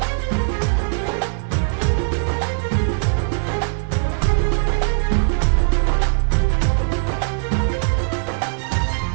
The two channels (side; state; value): left; silent; digital silence